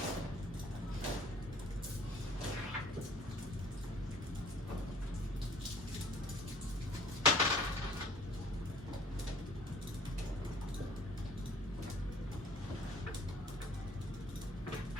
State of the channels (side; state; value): both; normal; correlation 0.53